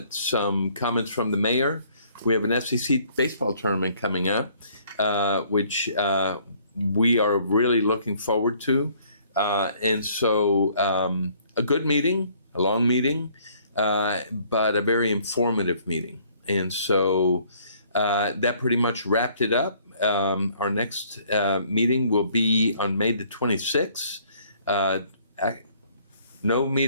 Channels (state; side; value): inverted; both; correlation -0.61